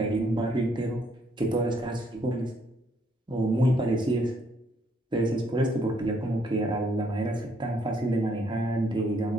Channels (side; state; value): both; normal; correlation 0.69